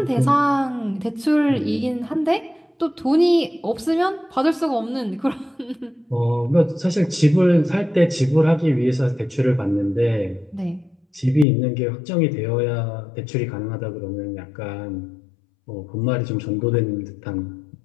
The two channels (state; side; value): drops out; right; at 11.5 s